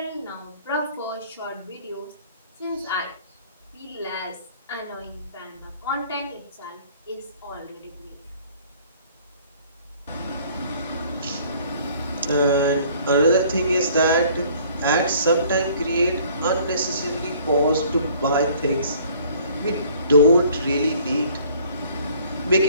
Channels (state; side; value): inverted; both; correlation -0.56